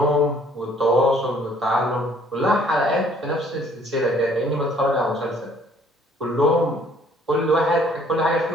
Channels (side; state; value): both; normal; correlation 0.60